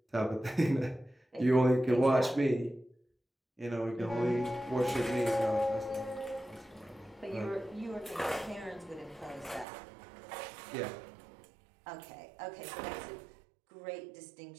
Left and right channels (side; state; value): left; drops out; at 9.7 s